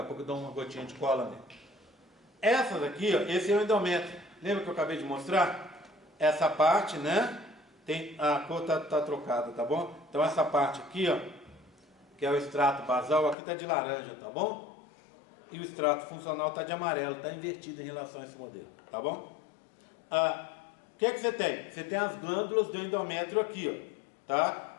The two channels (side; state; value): right; drops out; at 13.4 s